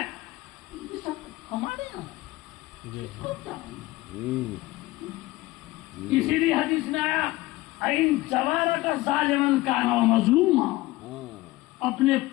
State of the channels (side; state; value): right; quieter; 18.8 dB